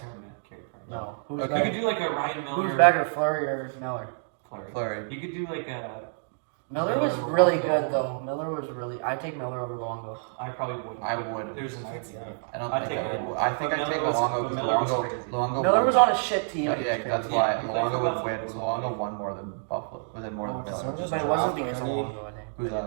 him to Carey Price. No. Who's Okay. You better? could do like a Ryan Miller. Who's better, Fleury or Miller? Fleury. Fleury. You could do like a. Miller was really good though. Miller was really. I take Miller over Luongo. I probably wouldn't. I would. There's an idea. I don't I'd think take I would. Miller. I think But I'd take Miller was- Luongo but because Miller was Luongo crazy. Miller was won. on a shit team. Yeah, It was yeah, that's crazy. why Yeah, Luongo would Buffalo win. was Luongo awesome. won more than Buffalo. Was it more than Oh, Miller? so just But it wasn't because of draft Luongo, I think. Who's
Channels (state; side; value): silent; left; digital silence